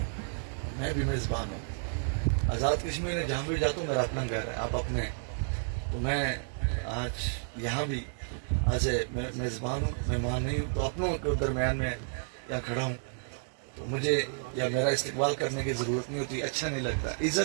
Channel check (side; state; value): left; silent; 57 dB below the other